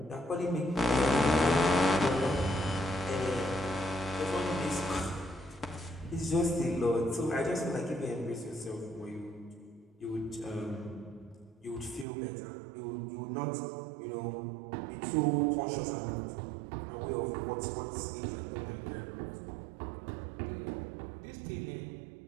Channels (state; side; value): drops out; left; at 12.1 s